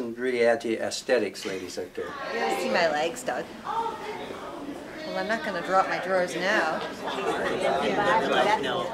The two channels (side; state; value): both; identical; correlation 1.00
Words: really add to aesthetics, ladies out there. You gotta see my legs, Doug. Well, I'm not going to drop my drawers now.